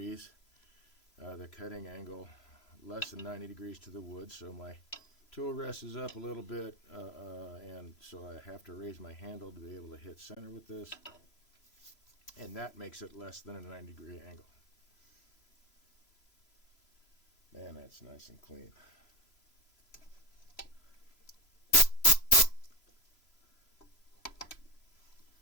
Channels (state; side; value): late; right; 3.0 ms